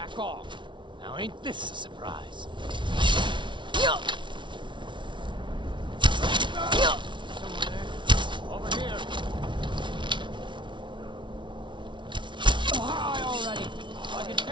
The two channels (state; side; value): late; left; 0.24 ms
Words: back off. Now ain't this a surprise? Someone there. Over here. High already. I can